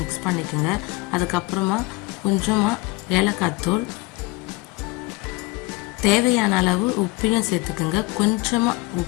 பண்ணிக்கோங்க. அதுக்கப்புறமா கொஞ்சமாக ஏலக்காய் தூள், தேவையான அளவு உப்பையும் சேர்த்துக்குங்க. கொஞ்சமாக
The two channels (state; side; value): quieter; right; 21.6 dB